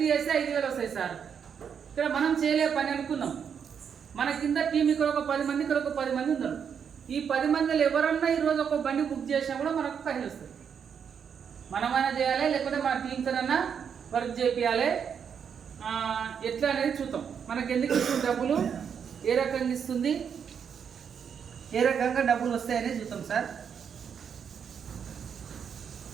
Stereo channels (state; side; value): quieter; left; 7.3 dB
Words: చేస్తే 5,000 వస్తాయి సార్. ఇక్కడ మనం చేయలే పని అనుకుందాం, మన కింద టీం ఇక్కడ ఒక 10 మంది, ఇక్కడ ఒక 10 మంది ఉన్నారు. ఈ 10 మందిలో ఎవరన్నా ఈరోజు ఒక బండి బుక్ చేసినా కూడా మనకు పైసలు వస్తాయి. మనమైనా చేయాలి, లేకపోతే మన టీంతోనన్నా వర్క్ చేయాలి. ఎట్లా అనేది చూద్దాం. మనకి ఎందుకు ఇస్తుంది డబ్బులు, ఏ రకంగా ఇస్తుంది, ఏ రకంగా డబ్బులు వస్తాయనేది చూద్దాం సార్.